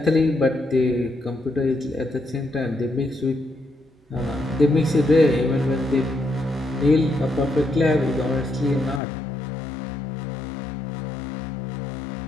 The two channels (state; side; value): drops out; right; at 9.0 s